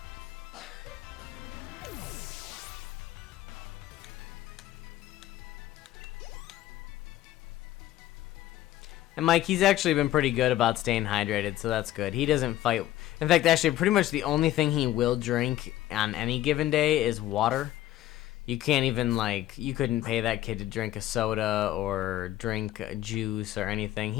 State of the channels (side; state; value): right; quieter; 14.1 dB